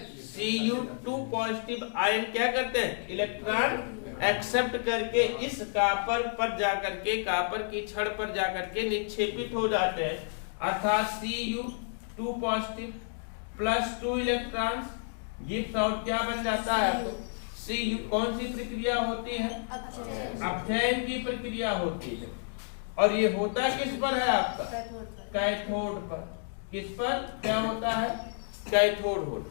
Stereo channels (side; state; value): right; silent; digital silence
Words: Cu2 positive ion क्या करते हैं? इलेक्ट्रॉन एक्सेप्ट करके इस कॉपर पर जाकर के, कॉपर की छड़ पर जाकर के निक्षेपित हो जाते हैं। अर्थात Cu2 positive plus 2 electron gives out क्या बन जाता है? Cu। कौन सी प्रक्रिया होती है? अपचयन की प्रक्रिया होती है। और ये होता किस पर है आपका? कैथोड पर। किस पर क्या होता है? कैथोड